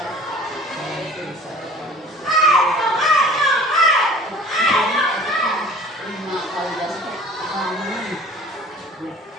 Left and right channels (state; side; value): normal; both; correlation 0.46